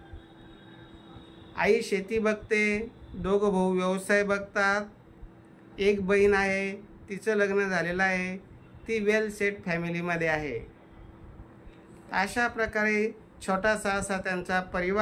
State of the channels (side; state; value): both; identical; correlation 1.00